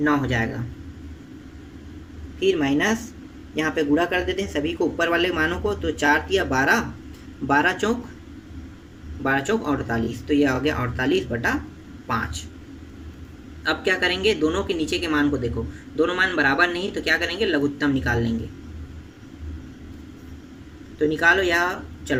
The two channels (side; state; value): both; identical; correlation 1.00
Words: हो जाएगा। फिर माइनस यहाँ पे गुणा कर देते हैं सभी को, ऊपर वाले मानों को। तो 4 तिया 12, 12 चौक 48, तो यह हो गया 48/5। अब क्या करेंगे, दोनों के नीचे के मान को देखो, दोनों मान बराबर नहीं, तो क्या करेंगे, लघुत्तम निकाल लेंगे। तो निकालो, या